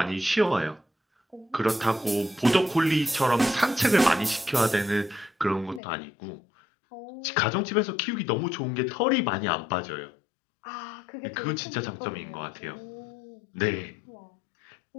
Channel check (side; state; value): right; drops out; at 5.8 s